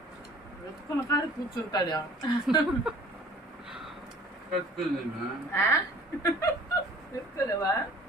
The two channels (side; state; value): both; normal; correlation 0.50